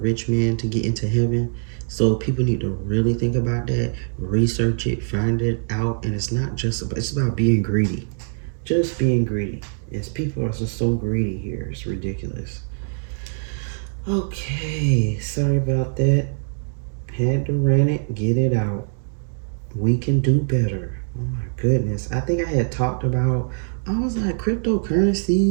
man to get into heaven. So people need to really think about that, research it, find it out, and it's about being greedy. Just being greedy. Yes, people are just so greedy here. It's ridiculous. Okay, sorry about that. Had to rant it, get it out. We can do better. Oh my goodness. I think I had talked about, I was like,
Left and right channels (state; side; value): silent; left; digital silence